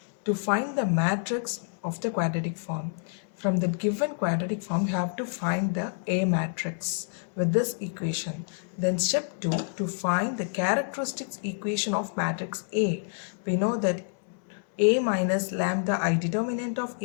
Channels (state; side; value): silent; right; 59 dB below the other